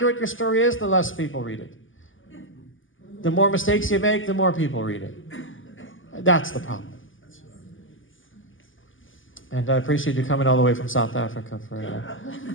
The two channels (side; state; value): right; late; 0.58 ms